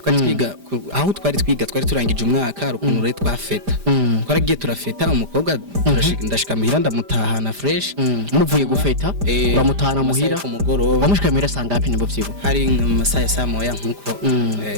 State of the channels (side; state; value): left; late; 5.0 ms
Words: aho twari turangije umwaka rukuntu re twafeta twaragiye turafeta umukobwa ndashika muhira ndamutahana fresh muvuye gufeta bamutahana muhira bamushika muhira sanga hapi nimbo vyibo hari masaha ya saa moya nkuko